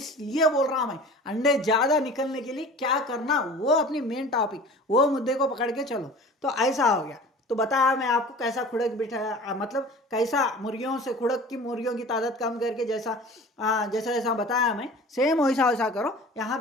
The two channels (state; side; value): normal; both; correlation 0.41